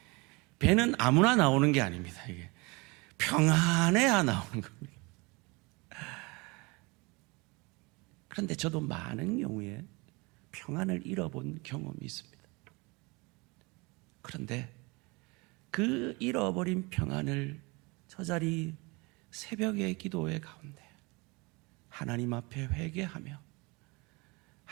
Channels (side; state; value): left; quieter; 26.7 dB